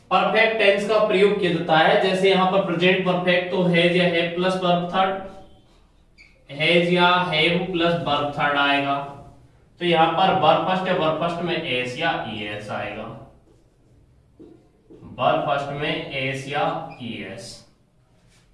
परफेक्ट टेंस का प्रयोग किया जाता है। जैसे यहां पर प्रेजेंट परफेक्ट तो हैज या have plus verb third, has या हैव प्लस वर्ब थर्ड आएगा। तो यहां पर वर्ब फर्स्ट है, वर्ब फर्स्ट में एस या ईएस आएगा। वर्ब फर्स्ट में एस या ईएस।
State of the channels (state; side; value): identical; both; correlation 1.00